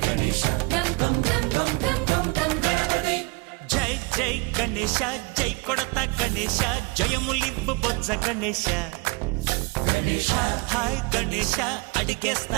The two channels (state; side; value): quieter; left; 27.2 dB